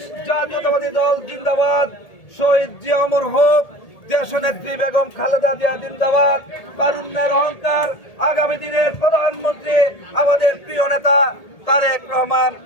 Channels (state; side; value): late; right; 1.8 ms